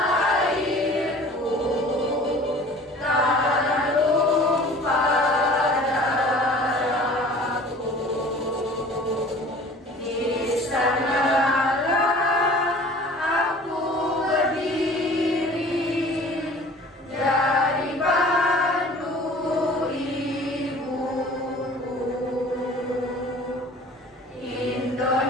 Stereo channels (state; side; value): normal; both; correlation 0.46